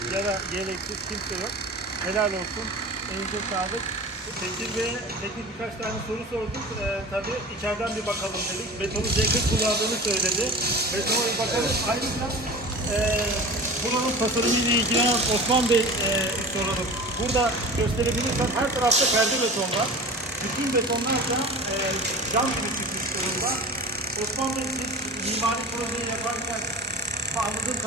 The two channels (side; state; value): both; normal; correlation 0.36